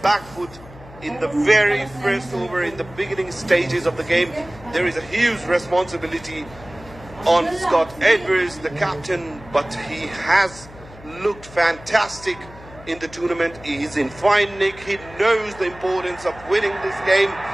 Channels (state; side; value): noise; left; hum, 19 dB below the sound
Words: back foot in the very first over, in the beginning stages of the game. There is a huge responsibility on Scott Edwards, the captain, but he has looked fantastic in the tournament. He is in fine nick. He knows the importance of winning this game.